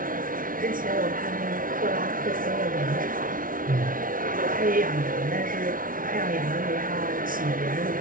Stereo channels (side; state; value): left; late; 0.40 ms